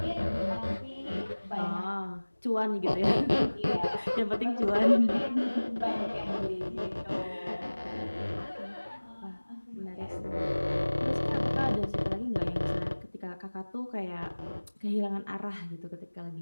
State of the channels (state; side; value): inverted; both; correlation -1.00